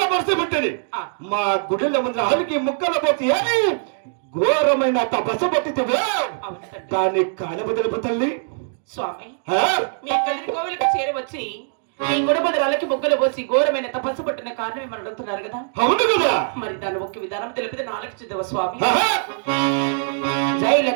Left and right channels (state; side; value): silent; left; 61 dB below the other